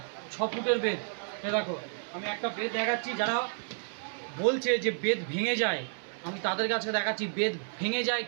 6 ফুটের বেদ। এ দেখো, আমি একটা বেদ দেখাচ্ছি। যারা বলছে যে বেদ ভেঙে যায়, আমি তাদের কাছে দেখাচ্ছি বেদ ভেঙে যায়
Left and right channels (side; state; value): left; silent; 57 dB below the other